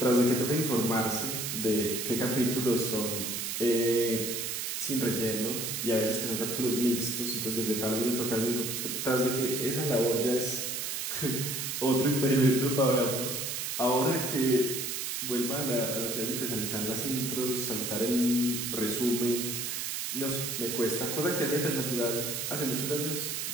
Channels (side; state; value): right; noise; hiss, 3 dB below the sound